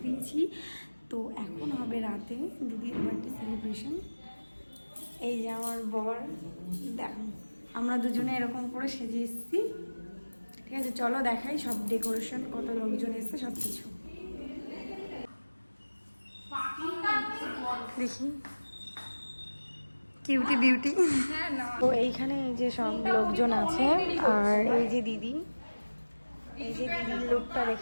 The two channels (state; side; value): inverted; both; correlation -1.00